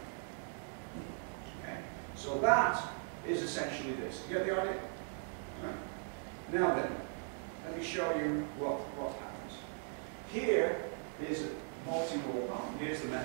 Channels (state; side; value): silent; left; 52 dB below the other